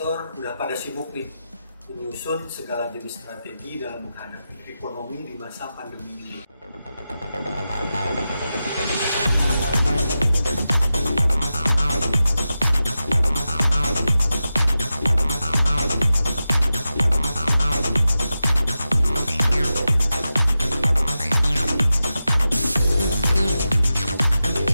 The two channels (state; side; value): inverted; both; correlation -0.92